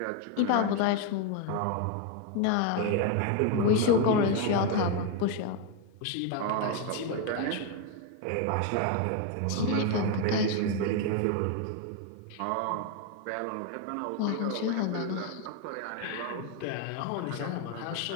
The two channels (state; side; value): different; both; correlation 0.01